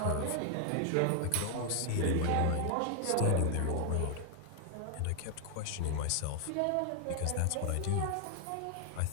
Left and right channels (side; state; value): both; different; correlation 0.00